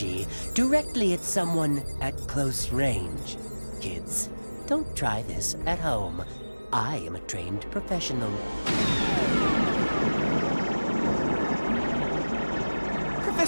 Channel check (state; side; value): inverted; both; correlation -1.00